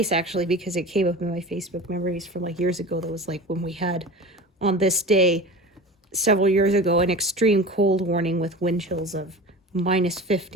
actually, because it came up in my Facebook memories from like years ago. That was like when we had on this day several years ago an extreme cold warning with wind chills of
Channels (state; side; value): normal; both; correlation 0.34